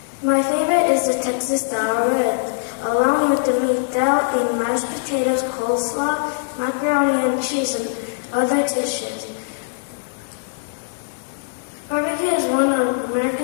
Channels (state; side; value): silent; right; digital silence